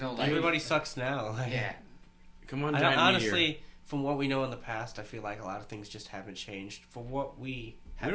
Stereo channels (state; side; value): identical; both; correlation 1.00